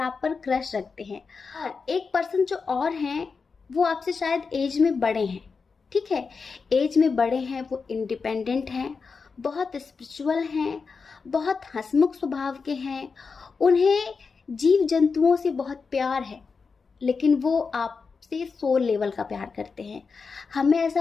पर क्रश रखते हैं। और एक पर्सन जो और हैं वो आपसे शायद एज में बड़े हैं। ठीक है, एज में बड़े हैं, वो इंडिपेंडेंट हैं, बहुत स्पिरिचुअल हैं, बहुत हंसमुख स्वभाव के हैं, उन्हें जीव जंतुओं से बहुत प्यार है, लेकिन वो आपसे सोल लेवल का प्यार करते हैं। हमें ऐसा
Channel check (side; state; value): right; quieter; 5.0 dB